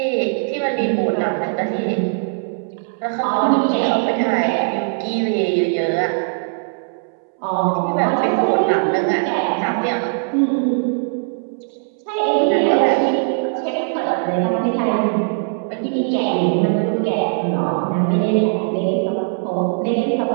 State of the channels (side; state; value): left; silent; 66 dB below the other